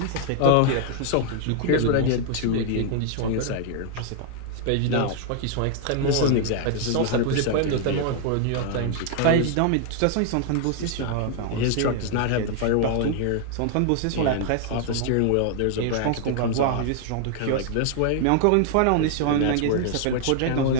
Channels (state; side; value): different; both; correlation 0.00